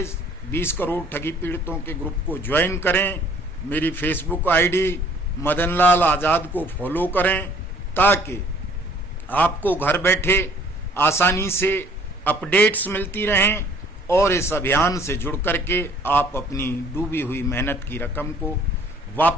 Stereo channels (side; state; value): both; normal; correlation 0.57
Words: 20 करोड़ ठगी पीड़ितों के ग्रुप को ज्वाइन करें, मेरी फेसबुक आईडी मदनलाल आज़ाद को फॉलो करें ताकि आपको घर बैठे आसानी से अपडेट्स मिलती रहें और इस अभियान से जुड़ करके आप अपनी डूबी हुई मेहनत की रकम को